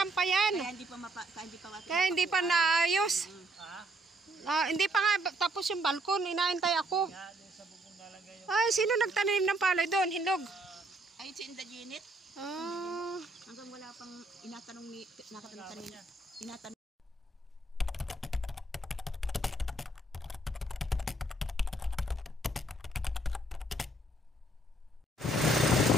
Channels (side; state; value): both; normal; correlation 0.69